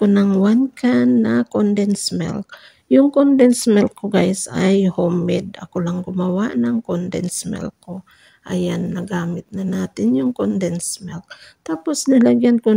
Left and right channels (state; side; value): identical; both; correlation 1.00